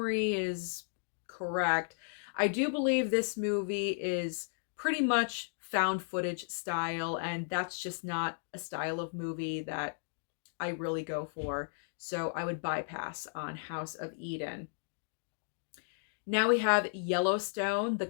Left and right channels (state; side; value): silent; right; digital silence